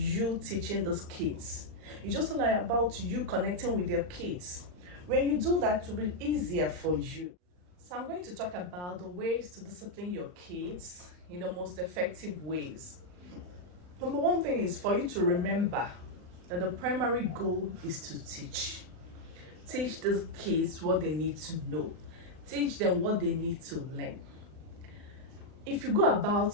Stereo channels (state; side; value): late; left; 39 ms